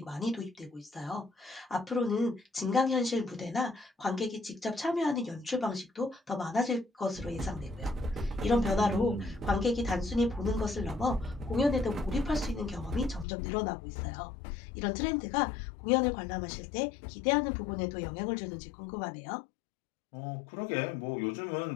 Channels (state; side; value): drops out; right; at 13.2 s